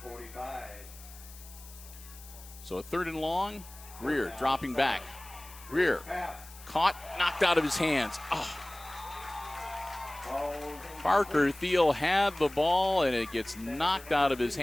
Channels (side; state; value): left; noise; hiss, 19 dB below the sound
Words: 45. So a 3rd and long. Greer dropping back. Greer caught, knocked out of his hands. Oh. Parker Thiel had the ball, and it gets knocked out of his